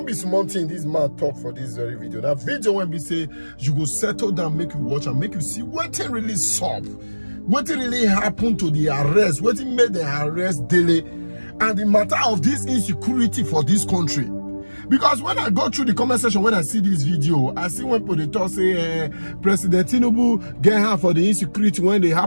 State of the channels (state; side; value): inverted; both; correlation -1.00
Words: be small thing this man talk for this very video. Now video when we say you go settle down, make you watch and make you see what really solve, what really happened to the arrest, what made the arrest Dele, and the matter of this insecurity for this country. Because when I go through the comment section, when I see this video, I see when people talk say President Tinubu get her for the insecurity when they